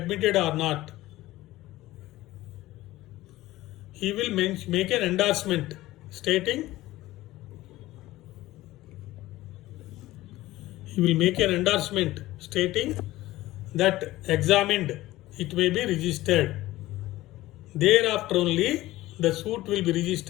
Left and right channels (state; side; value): quieter; right; 16.9 dB